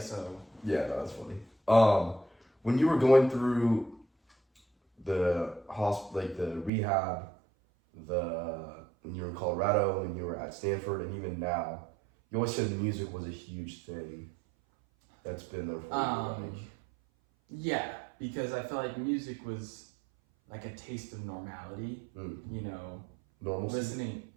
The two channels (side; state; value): left; drops out; at 6.7 s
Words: so. Yeah, no, that's funny. When you were going through the like the rehab, when you were in Colorado, when you were at Stanford, and even now, you always said music was a huge thing that's been there for you. Like, Yeah, because I feel like music was like a taste of normality, Mm. you know, normalcy.